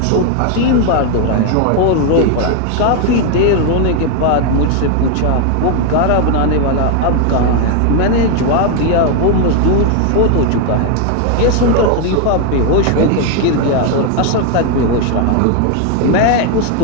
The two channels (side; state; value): both; different; correlation 0.01